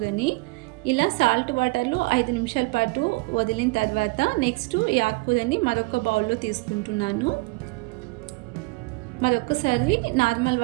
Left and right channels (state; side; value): quieter; left; 25.5 dB